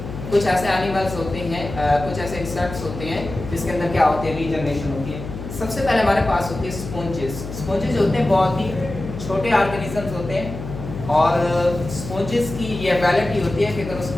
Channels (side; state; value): left; noise; hum, 9 dB below the sound